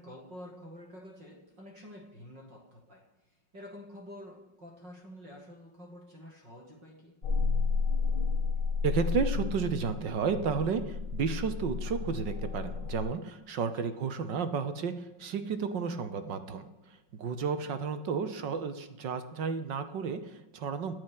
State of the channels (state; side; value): late; left; 5.5 ms